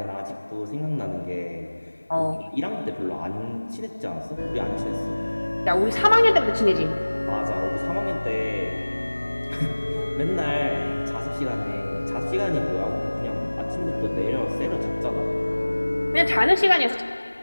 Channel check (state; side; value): inverted; both; correlation -1.00